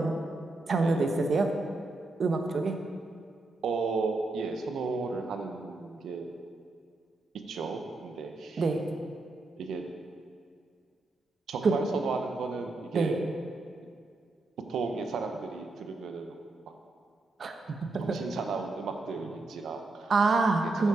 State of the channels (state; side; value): quieter; left; 3.2 dB